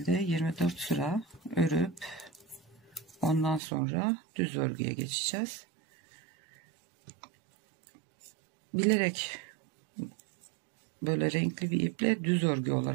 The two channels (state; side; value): drops out; left; at 3.6 s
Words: 24 sıra örüp ondan sonra düz örgüye geçeceğiz. Bilerek böyle renkli bir iple düz örgü